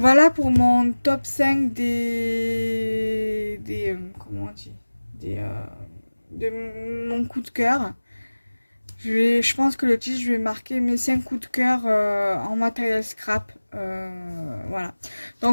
pour mon top 5 comment on dit, de mon coup de cœur. Je pense que le titre, je vais marquer mes 5 coups de cœur en matériel scrap. Voilà.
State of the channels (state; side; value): inverted; both; correlation -1.00